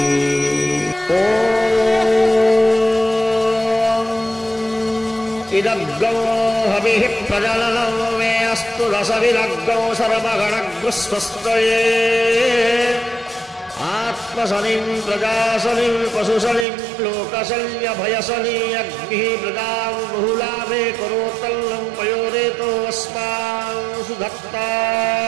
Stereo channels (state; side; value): drops out; left; at 16.7 s